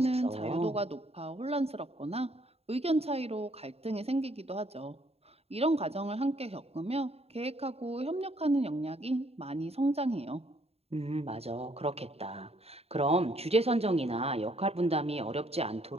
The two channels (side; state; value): left; late; 0.29 ms